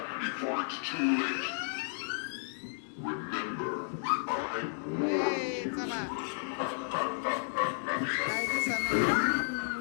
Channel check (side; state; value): right; silent; digital silence